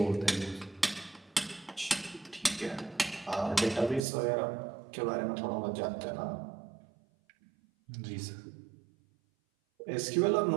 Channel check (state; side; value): drops out; left; at 4.0 s